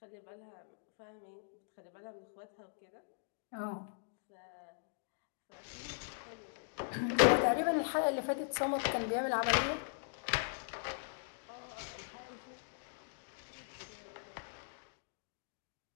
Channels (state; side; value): silent; right; digital silence